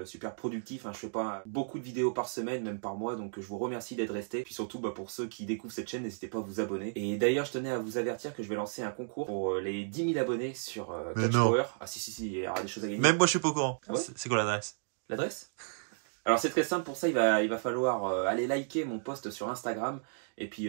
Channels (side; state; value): left; silent; digital silence